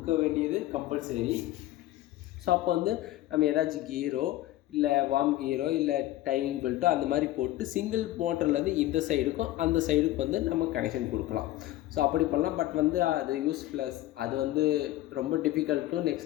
வேண்டியது கம்பல்சரி. ஸோ அப்போ வந்து நம்ம ஏதாச்சும் கீரோ இல்லை வார்ம் கீரோ இல்லை டைமிங் பெல்ட்டோ அந்த மாதிரி போட்டு சிங்கிள் மோட்டர்லேருந்து இந்த சைடுக்கும் அந்த சைடுக்கும் வந்து நம்ம கனெக்ஷன் கொடுக்கலாம். ஸோ அப்படி பண்ணலாம். பட் வந்து அது யூஸ்லெஸ், அது வந்து ரொம்ப டிஃபிகல்ட்டும்,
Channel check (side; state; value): right; quieter; 15.4 dB